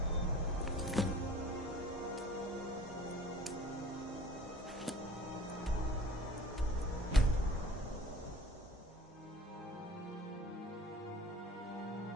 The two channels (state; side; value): normal; both; correlation 0.48